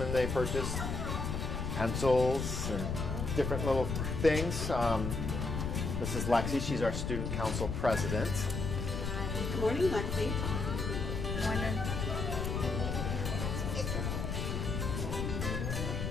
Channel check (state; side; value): noise; left; rumble, 2 dB below the sound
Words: and they purchase pencils and different little things. This is Lexi. She's our student council president. Good morning, Lexi. Good morning.